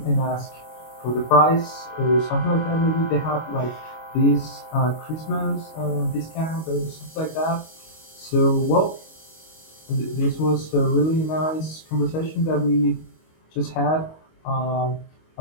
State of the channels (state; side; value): late; right; 25 ms